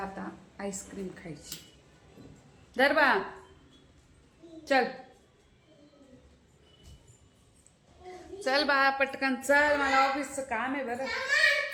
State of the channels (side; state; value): both; identical; correlation 1.00